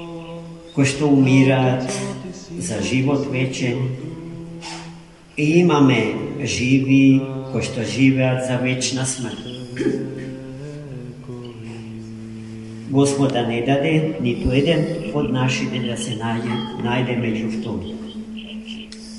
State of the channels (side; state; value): both; identical; correlation 1.00